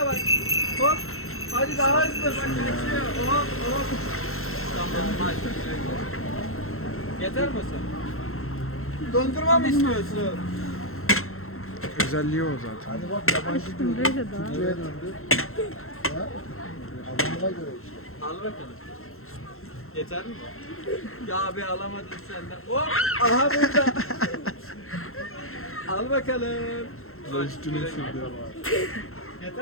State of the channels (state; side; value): late; right; 0.62 ms